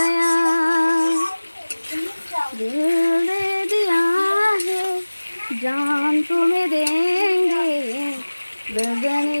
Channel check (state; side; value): inverted; both; correlation -1.00